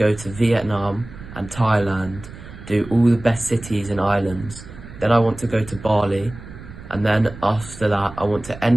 to Vietnam and Thailand, do all the best cities and islands. Then I want to go to Bali, and then after that, I want to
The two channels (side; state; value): right; noise; rumble, 15 dB below the sound